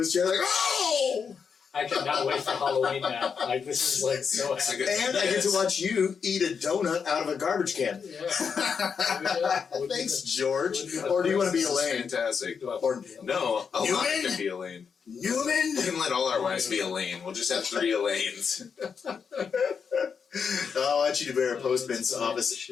chair like, oh! I cannot wait for Halloween now. Like, this is like so happy. And I get to watch you eat a donut out of a garbage can. Thanks, George. Or do you want to be Elaine? Fantastic. Or no, Elaine can be Elaine. Newman? We can let all our wives be Elaine. We'll just have 3 Elaines. I want you to wear a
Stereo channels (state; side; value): quieter; right; 6.2 dB